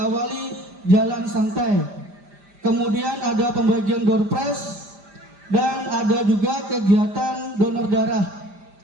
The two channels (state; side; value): late; left; 5.0 ms